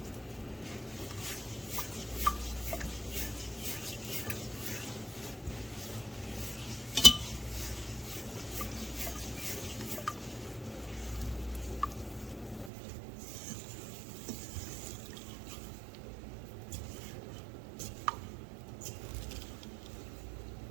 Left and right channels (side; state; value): left; drops out; at 12.7 s